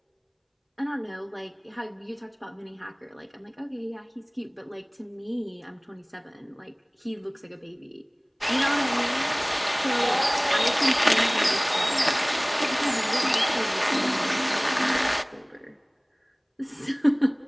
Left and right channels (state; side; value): identical; both; correlation 1.00